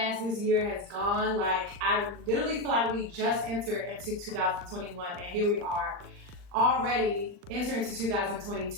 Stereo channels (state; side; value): late; left; 39 ms